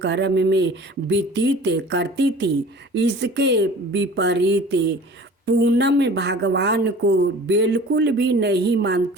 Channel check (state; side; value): normal; both; correlation 0.44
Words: कर्म में व्यतीत करती थी। इसके विपरीत पूनम भगवान को बिल्कुल भी नहीं